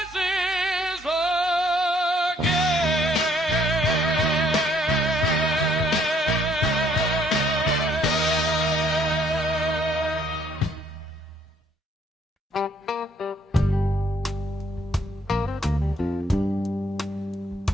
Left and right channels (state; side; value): normal; both; correlation 0.66